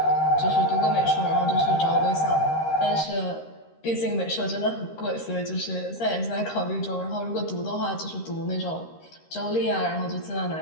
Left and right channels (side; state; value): right; late; 13 ms